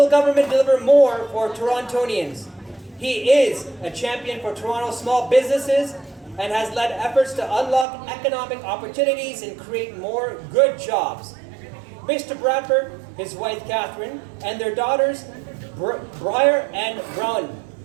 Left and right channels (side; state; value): left; drops out; at 7.9 s